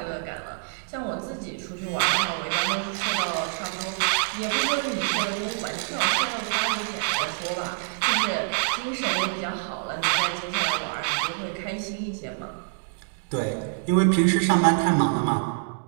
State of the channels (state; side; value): silent; left; digital silence